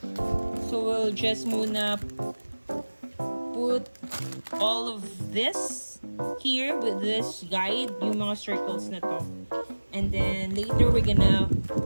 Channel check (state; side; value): inverted; both; correlation -1.00